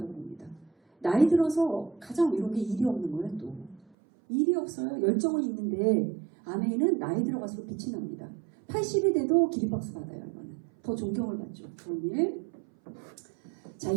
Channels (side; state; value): left; drops out; at 3.8 s